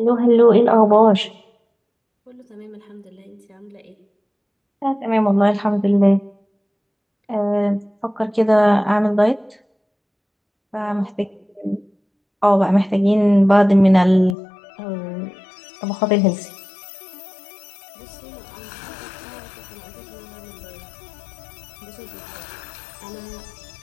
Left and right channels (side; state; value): right; drops out; at 14.4 s